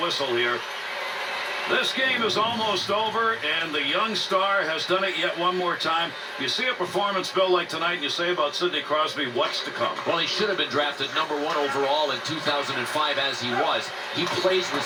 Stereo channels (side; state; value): both; identical; correlation 1.00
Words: whistle here. This game is almost over, and the young star has done it yet one more time. You see a performance, Bill, like tonight, and you say about Sidney Crosby, what's to come? Well, he should have been drafted #1 overall in 2005 as he was. He plays with